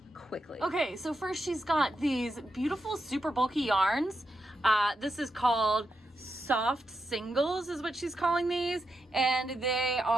quickly. Okay, so first she's got these beautiful super bulky yarns. This is called soft singles is what she's calling these, and they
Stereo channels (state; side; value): normal; both; correlation 0.85